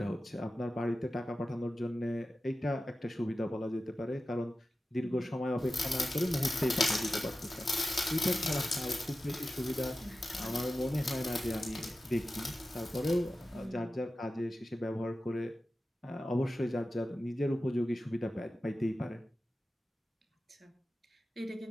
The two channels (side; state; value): both; normal; correlation 0.93